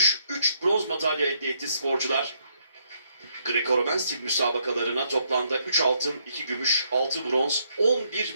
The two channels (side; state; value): both; inverted; correlation -0.73